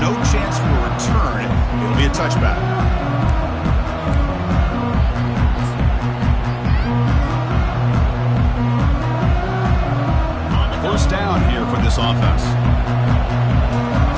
no chance for a return. It'll be a touchback. First down here for this offense.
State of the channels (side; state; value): both; identical; correlation 1.00